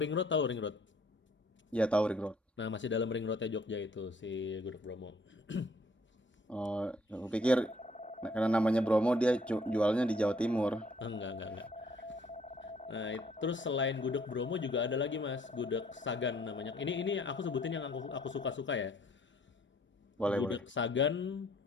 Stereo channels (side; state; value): both; normal; correlation 0.62